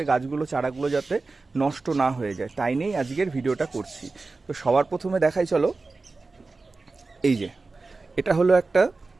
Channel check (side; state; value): left; quieter; 3.7 dB